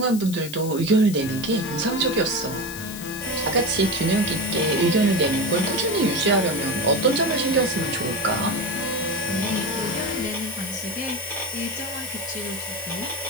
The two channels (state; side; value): noise; left; hiss, 12 dB below the sound